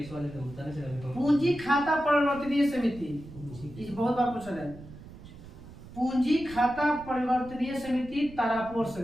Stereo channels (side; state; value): right; noise; rumble, 16 dB below the sound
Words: वाले तो होता है। पूंजी खाता परिवर्तनीय समिति, इस बहुत बार पूछा है। पूंजी खाता परिवर्तनीय समिति तारापुर